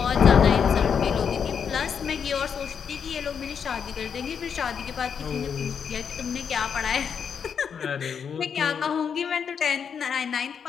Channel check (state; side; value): quieter; right; 7.0 dB